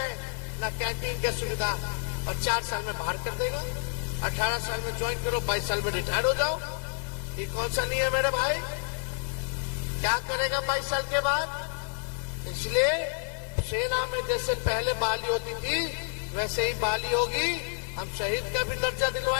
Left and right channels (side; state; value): right; silent; 58 dB below the other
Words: न कैंटीन की सुविधा, और 4 साल में बाहर कर देगा। 18 साल में ज्वाइन करो, 22 साल में रिटायर हो जाओ। ये कौन सा नहीं है मेरे भाई? क्या करेगा 22 साल के बाद? इसलिए सेना में जैसे पहले बहाली होती थी, वैसे ही बहाली होगी। हम शहीद का भी दर्जा